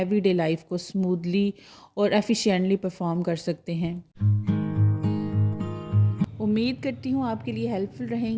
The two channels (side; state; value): both; identical; correlation 1.00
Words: लाइफ को स्मूथली और एफिशिएंटली परफॉर्म कर सकते हैं। उम्मीद करती हूँ आपके लिए हेल्पफुल